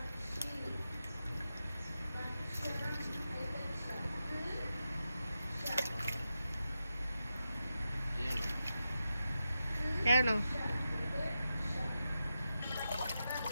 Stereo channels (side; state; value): both; inverted; correlation -0.90